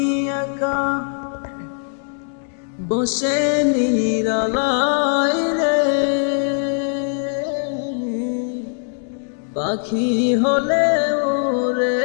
একা বসে নিরালায় রে, পাখি হলে উড়ে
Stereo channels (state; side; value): silent; right; digital silence